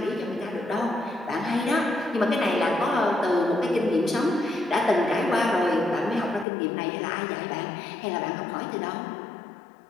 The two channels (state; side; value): drops out; right; at 6.5 s